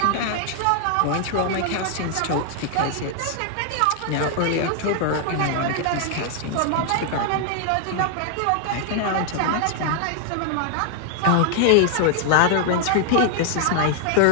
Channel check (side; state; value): both; different; correlation 0.00